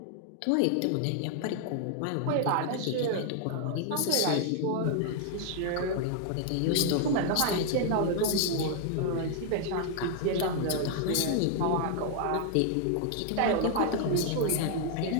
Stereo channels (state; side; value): different; both; correlation 0.00